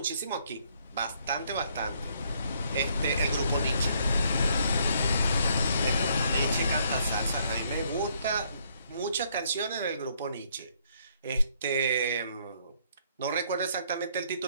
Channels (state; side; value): inverted; both; correlation -0.68